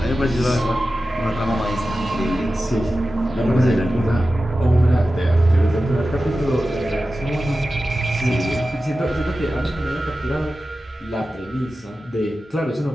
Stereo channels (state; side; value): normal; both; correlation 0.94